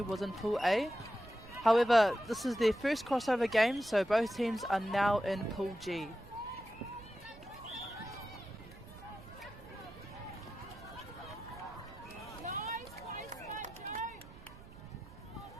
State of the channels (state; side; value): noise; right; rumble, 18 dB below the sound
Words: was in pool A. However, this is their first crossover game, so both teams are now in pool G.